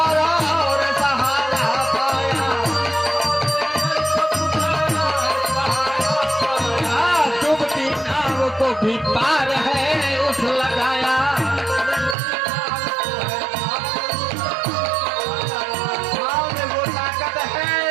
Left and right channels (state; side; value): drops out; left; at 12.2 s